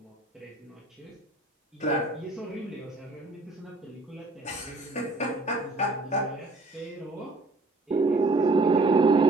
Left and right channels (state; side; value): quieter; left; 3.0 dB